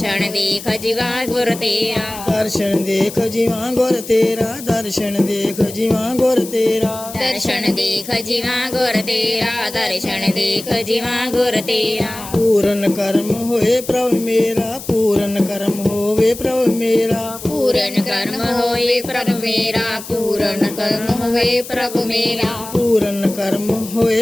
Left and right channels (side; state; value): left; noise; hiss, 13 dB below the sound